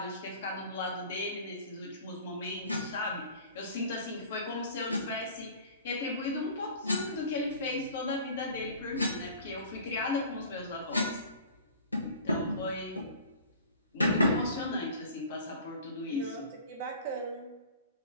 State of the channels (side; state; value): both; inverted; correlation -0.44